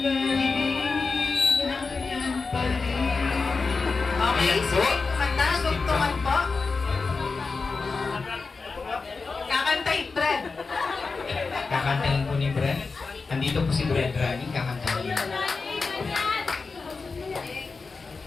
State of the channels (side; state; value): right; quieter; 4.4 dB